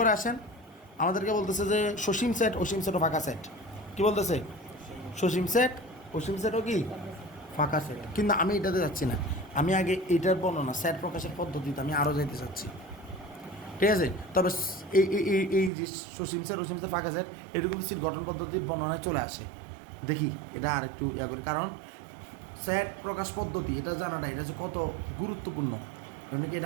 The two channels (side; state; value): left; drops out; at 15.7 s